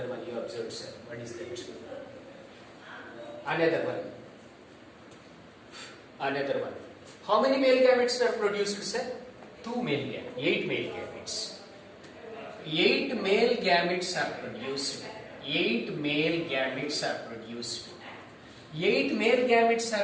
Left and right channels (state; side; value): identical; both; correlation 1.00